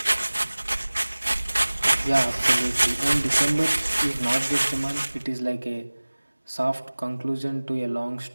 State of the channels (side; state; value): both; inverted; correlation -1.00